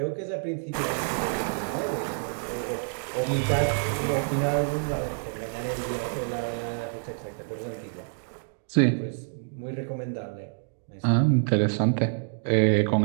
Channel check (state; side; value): silent; left; digital silence